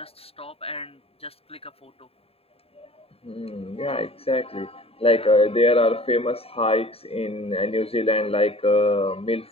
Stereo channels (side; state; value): right; late; 0.28 ms